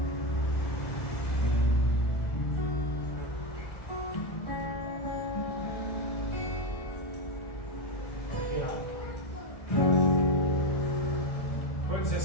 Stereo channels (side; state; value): right; late; 1.6 ms